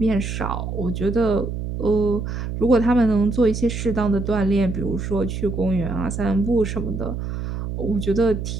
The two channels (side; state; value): right; noise; hum, 5 dB below the sound